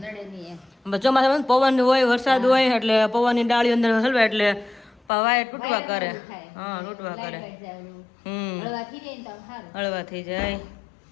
ચોમાસામાં પવન હોય, વરસાદ હોય એટલે પવનની ડાળી અંદર હલવે એટલે વાયર તૂટવા કરે. હા તૂટવા કરે. હળવા થઈ જાય.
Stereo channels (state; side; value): drops out; right; at 5.0 s